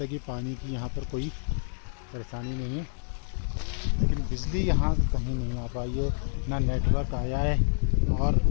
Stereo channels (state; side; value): silent; right; 59 dB below the other